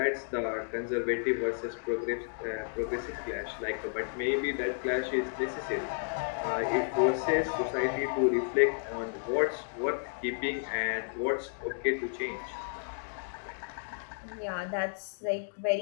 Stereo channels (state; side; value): silent; right; digital silence